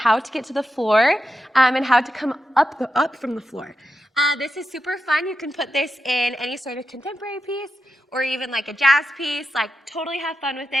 to get to the floor and how to come up from the floor. This is super fun. You can put this in any sort of contemporary piece or even like a jazz piece. Like, totally have fun with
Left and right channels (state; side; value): normal; both; correlation 0.90